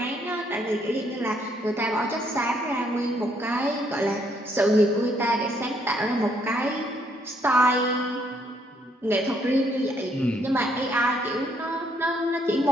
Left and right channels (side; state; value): both; normal; correlation 0.70